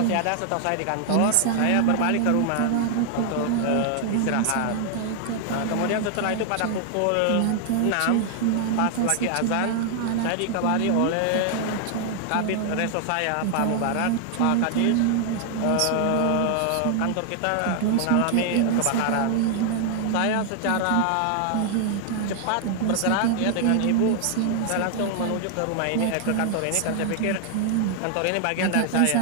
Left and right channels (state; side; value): different; both; correlation 0.00